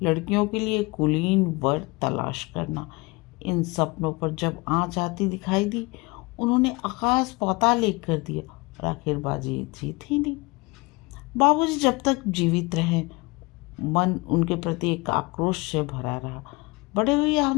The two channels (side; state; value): right; quieter; 25.2 dB